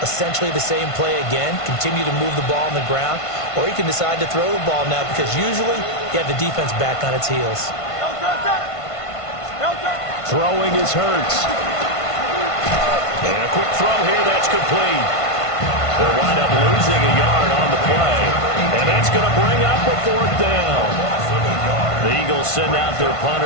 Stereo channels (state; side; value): late; right; 1.5 ms